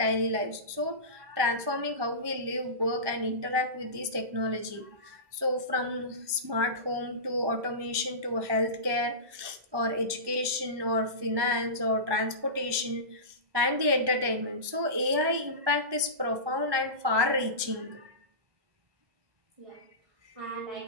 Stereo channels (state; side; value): late; left; 1.2 ms